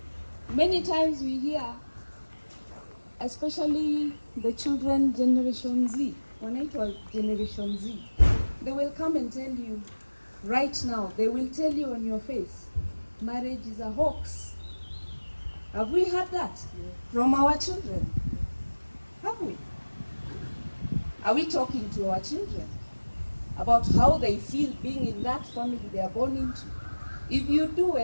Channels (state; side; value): inverted; both; correlation -1.00